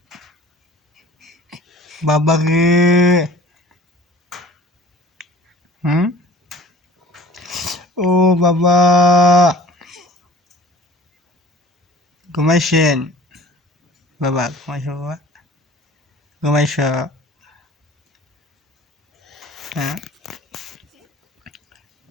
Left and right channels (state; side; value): normal; both; correlation 0.47